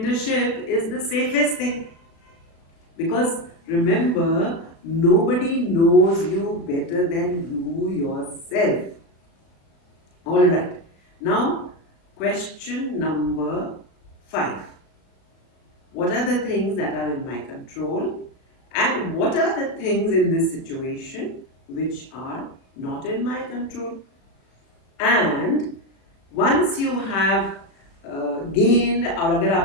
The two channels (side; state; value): right; late; 36 ms